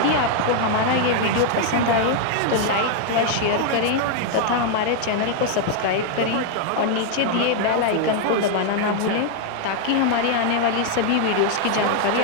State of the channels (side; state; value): both; different; correlation 0.00